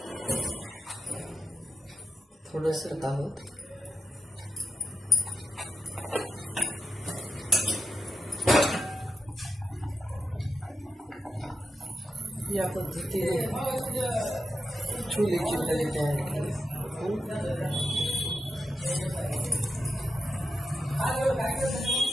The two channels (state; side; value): normal; both; correlation 0.86